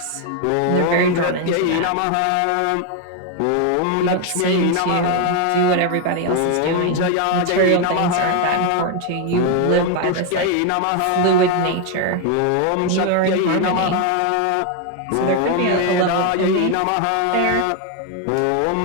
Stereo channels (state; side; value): different; both; correlation 0.01